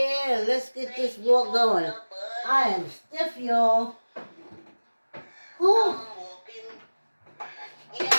let's get this walk going. I am stiff, y'all. Whew.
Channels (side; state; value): both; inverted; correlation -1.00